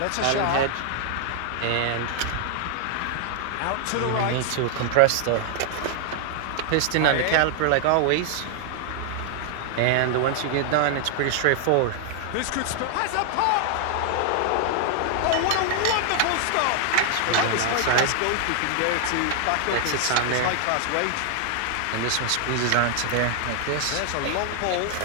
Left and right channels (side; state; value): both; different; correlation 0.00